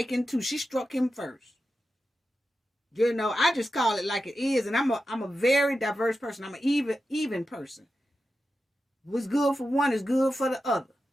too. She struck him first. You know, I just call it like it is, and I'm a very diverse person. I'm an even person. What's good for one is good for the other.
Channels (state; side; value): normal; both; correlation 0.91